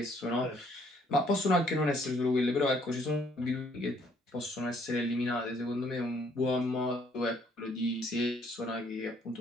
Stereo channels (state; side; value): normal; both; correlation 0.65